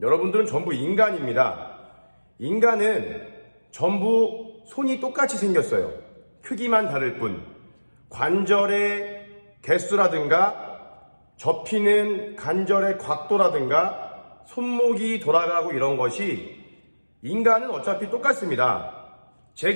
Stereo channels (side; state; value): both; inverted; correlation -1.00